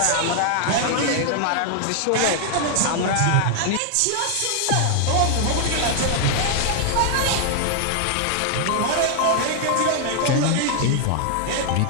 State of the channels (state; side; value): different; both; correlation 0.00